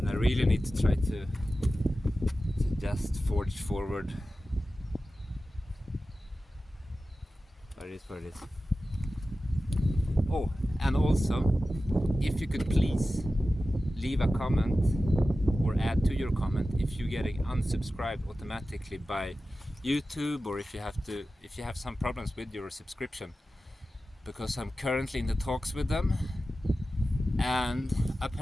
I really need to try to just forge forward. But it is what it is. Oh, and also, if you could please leave a comment or add to your comment if you're getting unsubscribed automatically by YouTube, or if you have some problems with your subscription, because I'm currently in the talks with them, and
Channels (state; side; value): normal; both; correlation 0.94